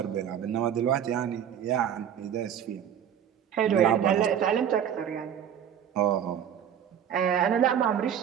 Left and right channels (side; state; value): left; quieter; 9.1 dB